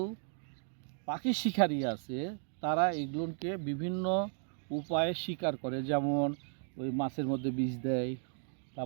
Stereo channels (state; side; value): silent; left; 55 dB below the other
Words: পাখি শিকারী আছে, তারা এগুলোকে বিভিন্ন উপায়ে শিকার করে। যেমন ওই মাছের মধ্যে বিষ দেয়,